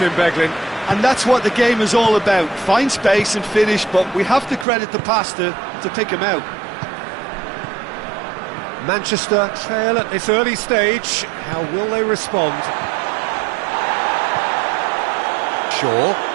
Beglin? And that's what the game is all about. Find space and finish, but we have to credit the pasta to pick him out. Manchester trail at this early stage. How will they respond? Shaw.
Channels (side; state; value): left; drops out; at 4.7 s